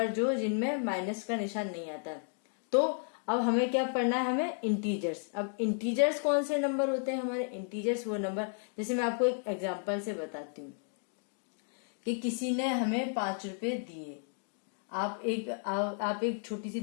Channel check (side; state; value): right; silent; 56 dB below the other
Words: जो जिनमें माइनस का निशान नहीं आता। तो अब हमें क्या पढ़ना है, हमें इंटीजर्स। अब इंटीजर्स कौन से नंबर होते हैं हमारे, इंटीजर्स वो नंबर, जैसे मैं आपको एक एग्जांपल से बताती हूँ कि किसी ने हमें 5 रुपए दिए। आप एक छोटी सी